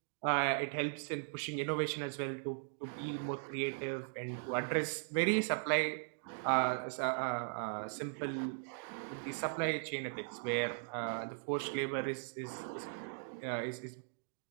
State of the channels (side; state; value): left; silent; digital silence